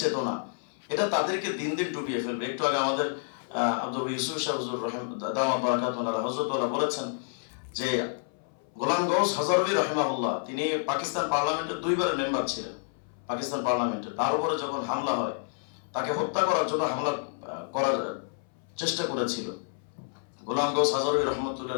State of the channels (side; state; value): right; silent; 59 dB below the other